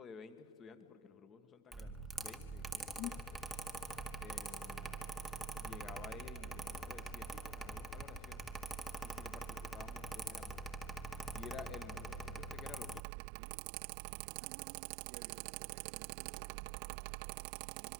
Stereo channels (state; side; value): drops out; left; at 13.1 s